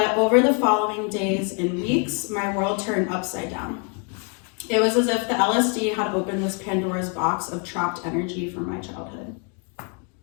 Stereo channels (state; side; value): quieter; right; 36.6 dB